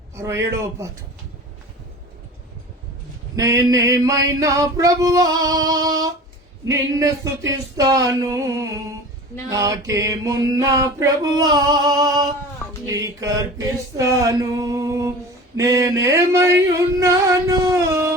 67వ పాట. నేనేమైనా ప్రభువా నిన్ను స్తుతిస్తాను, నాకేమున్నా ప్రభువా నీకర్పిస్తాను. నేనేమై ఉన్నాను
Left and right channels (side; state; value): both; normal; correlation 0.37